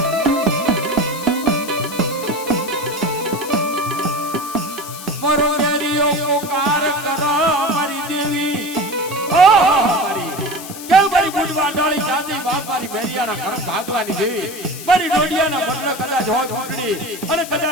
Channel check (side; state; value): left; noise; hiss, 12 dB below the sound